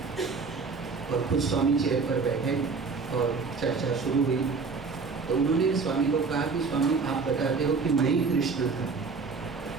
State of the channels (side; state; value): left; quieter; 4.7 dB